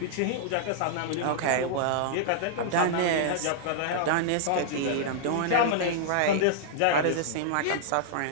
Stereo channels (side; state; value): both; different; correlation -0.01